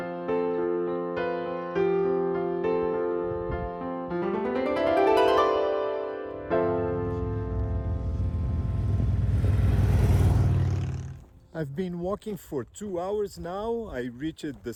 I've been walking for 2 hours now. I reached the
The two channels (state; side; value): identical; both; correlation 1.00